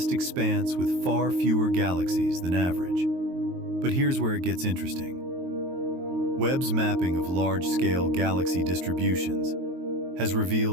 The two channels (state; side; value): late; left; 22 ms